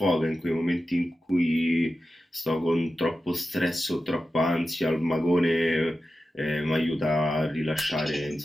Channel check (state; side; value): normal; both; correlation 0.92